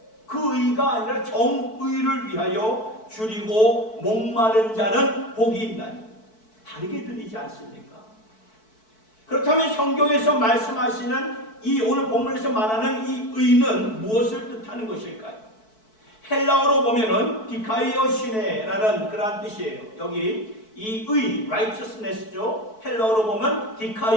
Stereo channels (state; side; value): late; right; 4.6 ms